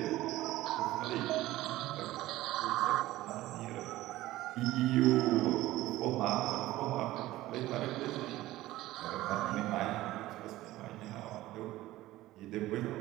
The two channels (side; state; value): left; quieter; 16.4 dB